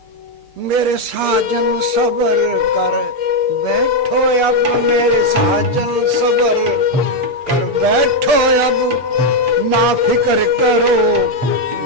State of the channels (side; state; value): left; late; 6.7 ms